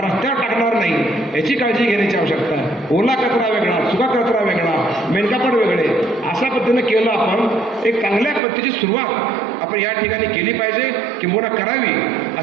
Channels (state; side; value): drops out; left; at 8.4 s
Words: रस्त्यावर टाकणार नाही याची काळजी घेण्याची आवश्यकता आहे. ओला कचरा वेगळा, सुका कचरा वेगळा, मेनकापड वेगळे, अशा पद्धतीनं केलं आपण एक चांगल्या पद्धतीची सुरुवात आपण या ठिकाणी केली पाहिजे, किंबहुना करावी